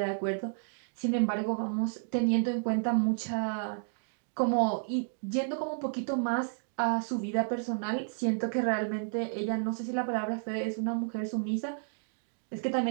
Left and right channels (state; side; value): silent; left; digital silence